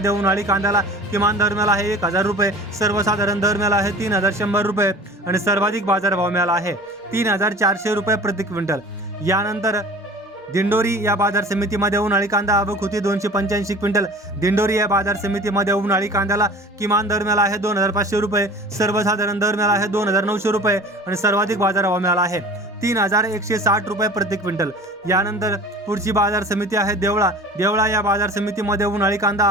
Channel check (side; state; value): both; normal; correlation 0.42